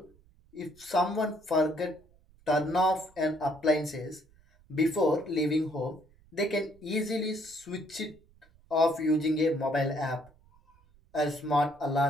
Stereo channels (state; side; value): noise; right; rumble, 29 dB below the sound